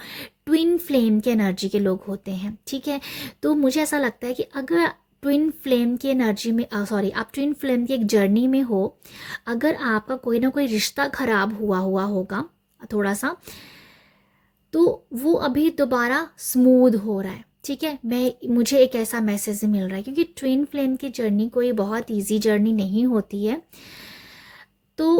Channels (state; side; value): identical; both; correlation 1.00